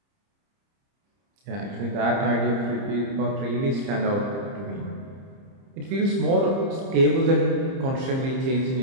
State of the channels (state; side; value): late; left; 30 ms